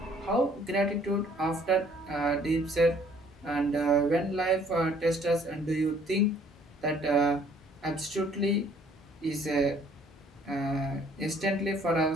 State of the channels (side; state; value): both; normal; correlation 0.59